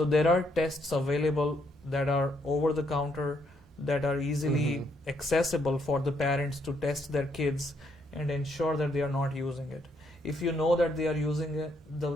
there are tests available that are over the counter, that are easily accessible for the parents to test their kids and ensure that they are not using it. If you know that they are using it,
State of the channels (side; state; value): both; normal; correlation 0.73